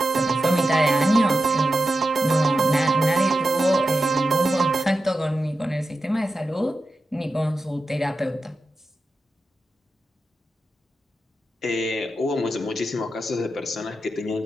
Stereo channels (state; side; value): normal; both; correlation 0.90